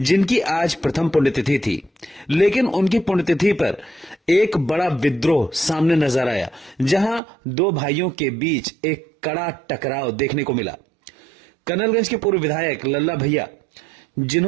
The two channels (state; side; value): drops out; left; at 7.2 s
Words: आज प्रथम पुण्यतिथि थी, लेकिन उनकी पुण्यतिथि पर एक बड़ा विद्रोह सामने नजर आया, जहां दो भाइयों के बीच एक कड़ा टकराव देखने को मिला। कर्नलगंज के पूर्व विधायक लल्ला भैया,